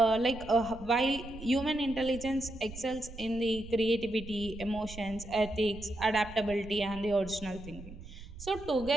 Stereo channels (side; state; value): right; noise; rumble, 15 dB below the sound